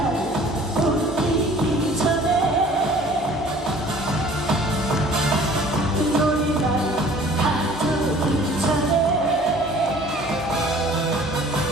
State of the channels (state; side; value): normal; both; correlation 0.51